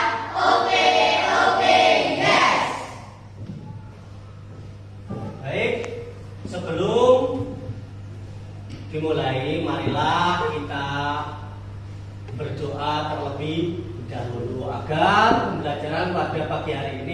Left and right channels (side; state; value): both; identical; correlation 1.00